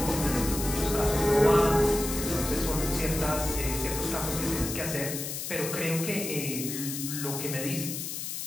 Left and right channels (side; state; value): left; noise; hiss, 5 dB below the sound